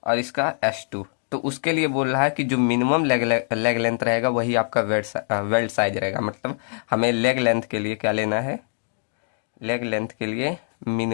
और इसका S2, तो उसके लिए बोल रहा है कि जो मिनिमम लेग लेंथ रहेगा वही आपका वेल्ड साइज रहेगा। मतलब हमें लेग लेंथ के लिए क्या लेना है? लेग लेंथ के लिए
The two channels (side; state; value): right; silent; digital silence